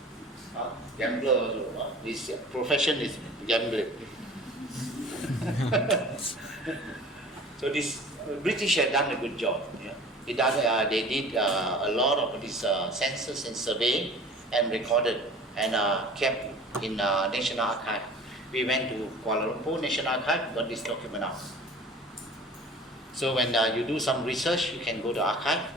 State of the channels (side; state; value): both; normal; correlation 0.43